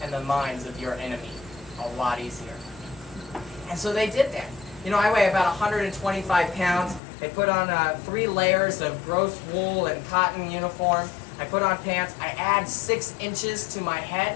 and the minds of your enemy a lot easier. And so they did that. You know, I weigh about 125 pounds. They put on 3 layers of gross wool and cotton uniform. I put on pants. I add 6 inches to my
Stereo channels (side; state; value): right; drops out; at 7.0 s